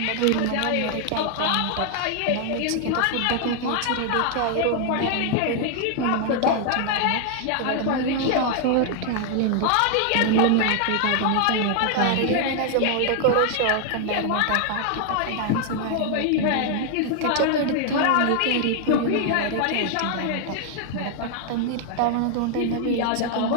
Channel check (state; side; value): different; both; correlation 0.00